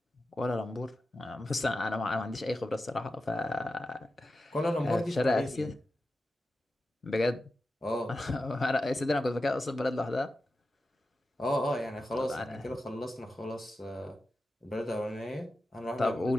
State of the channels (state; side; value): normal; both; correlation 0.92